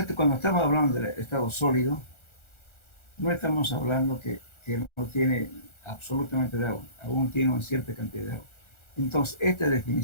cuando estamos hablando del estado sólido, no estamos hablando que no tiene absolutamente de agua, aún tiene una cierta cantidad de agua. Entonces, esta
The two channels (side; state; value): right; late; 1.4 ms